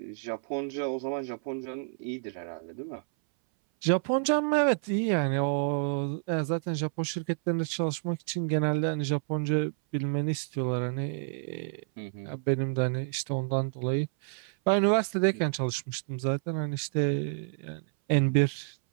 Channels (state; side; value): silent; left; 58 dB below the other